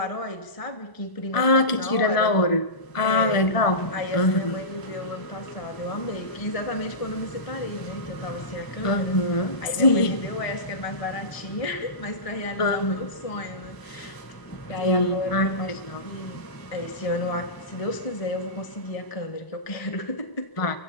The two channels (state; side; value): late; right; 1.0 ms